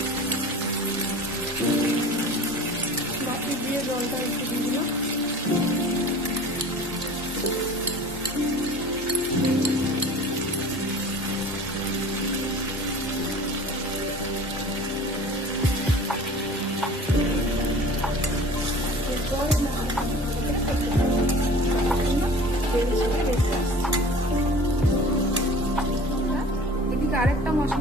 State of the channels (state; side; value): normal; both; correlation 0.42